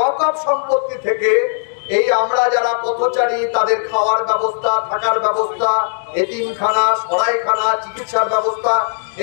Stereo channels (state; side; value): silent; right; digital silence